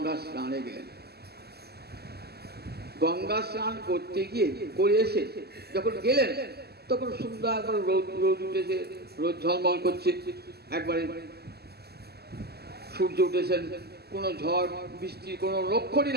স্নানে গেলেন। গঙ্গা স্নান করতে গিয়ে করে এসে যখন গেলেন তখন সুন্দর একবার রোদ উঠেছে, রোদ ঝলমল করছে, একবারে সূর্য উঠেছেন, কোনো ঝড় বৃষ্টির কোনো লক্ষণই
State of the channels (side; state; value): left; late; 0.46 ms